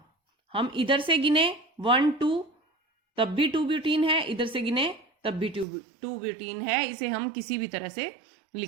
हम इधर से गिने 1, 2 तब भी 2 ब्यूटीन है, इधर से गिने तब भी 2 ब्यूटीन है। इसे हम किसी भी तरह से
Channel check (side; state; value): left; drops out; at 5.7 s